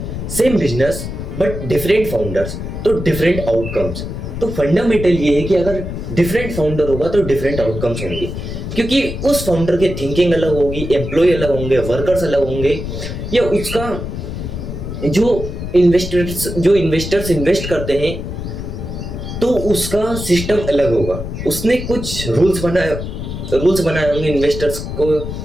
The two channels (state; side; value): noise; left; rumble, 6 dB below the sound